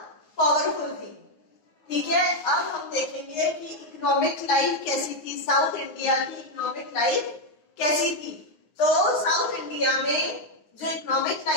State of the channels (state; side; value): late; right; 9.7 ms